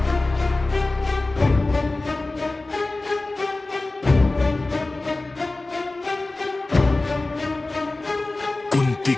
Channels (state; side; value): quieter; right; 3.1 dB